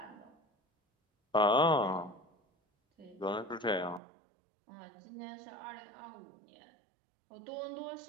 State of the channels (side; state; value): left; drops out; at 4.0 s